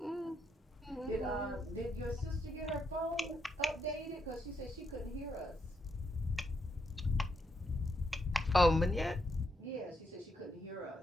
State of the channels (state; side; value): normal; both; correlation 0.79